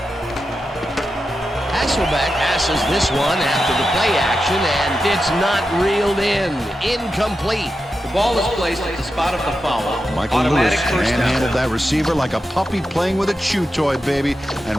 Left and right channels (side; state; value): both; normal; correlation 0.89